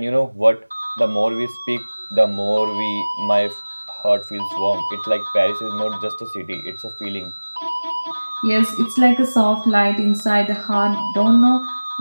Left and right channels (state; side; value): inverted; both; correlation -1.00